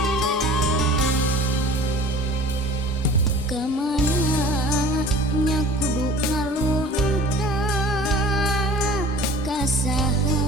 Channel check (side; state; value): both; normal; correlation 0.44